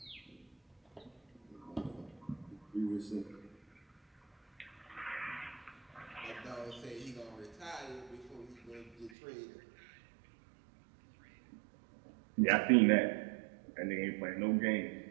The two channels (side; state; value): left; drops out; at 9.1 s